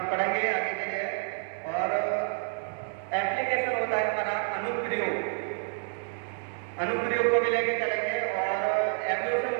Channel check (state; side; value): silent; left; 59 dB below the other